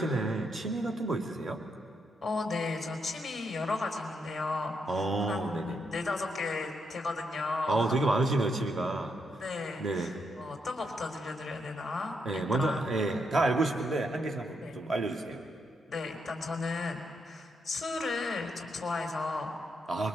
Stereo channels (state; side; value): normal; both; correlation 0.79